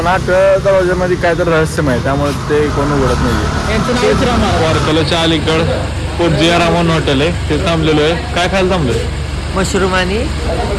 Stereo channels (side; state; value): both; identical; correlation 1.00